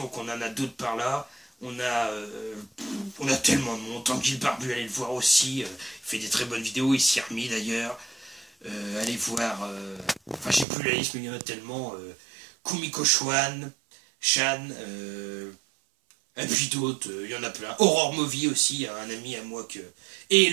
on en a d'autres par là. On a tellement de monde. Tanguy Barbu, allez le voir aussi. Il fait des très bonnes vidéos. Il s'y est remis d'ailleurs. Allez voir. Enfin, j'ai plus la liste, mais il y en a tellement. Kumiko Shan. Et puis d'autres. Il y en a plein. Aurore Movie aussi, un ami à moi que. Et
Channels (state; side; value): drops out; left; at 10.7 s